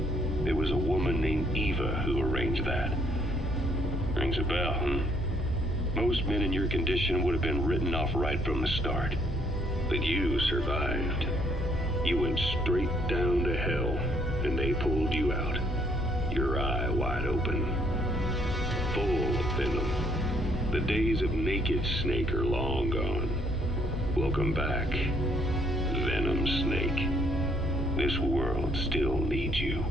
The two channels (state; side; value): normal; both; correlation 0.67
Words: There was a woman named Eva who arranged that. Rings a bell, huh? Most men in your condition would have been written off right from the start. But you survived. You went straight down to hell, and they pulled you out. Your eye wide open. Full of venom. The days of naked Snake are long gone. Welcome back, Venom Snake. This world still needs you.